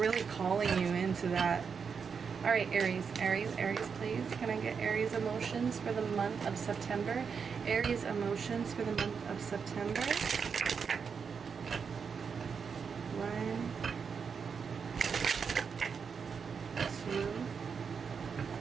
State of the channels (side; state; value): left; quieter; 6.1 dB